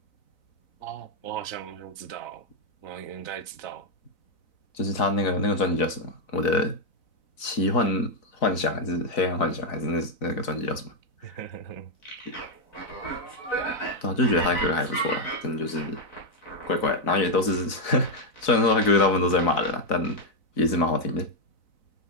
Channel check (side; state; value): right; late; 4.0 ms